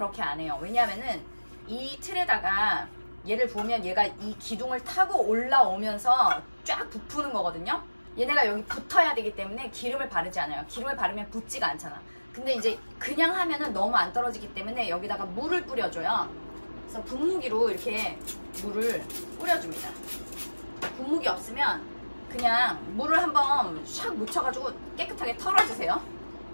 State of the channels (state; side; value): inverted; both; correlation -1.00